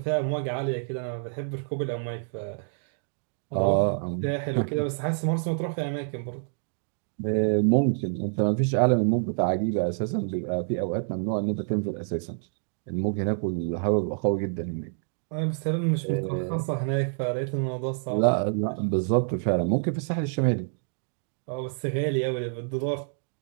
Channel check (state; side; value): silent; left; digital silence